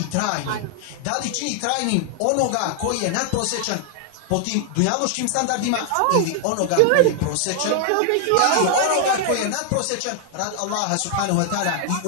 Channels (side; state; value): both; different; correlation 0.00